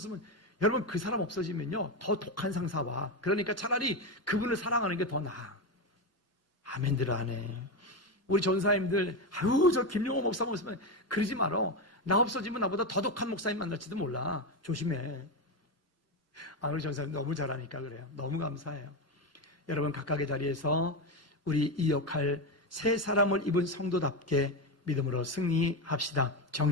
여러분, 그 사람 없어지면요 더 독한 상사와, 그러니까 차라리 그분을 사랑하는 게 더 나아. 아멘들 하네. 우리 전사님들, 저 김용호 목사님 없으면 그러지 말어. 나 없어지면 나보다 더 독한 목사님 만날지도 몰라. 조심해. 우리 전사님 너무 잘하니까 그래요. 너무 감사해요. 여러분, 각각의 자리에서 우리 이 역할, 새 사람을 입은 성도답게 믿음으로 승리합시다.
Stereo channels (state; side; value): normal; both; correlation 0.13